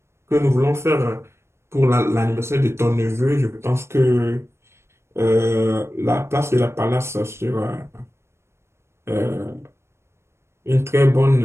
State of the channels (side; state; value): left; late; 0.13 ms